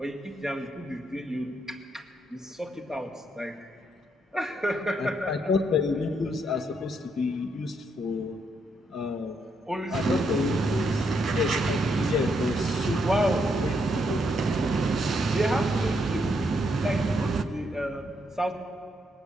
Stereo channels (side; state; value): both; normal; correlation 0.76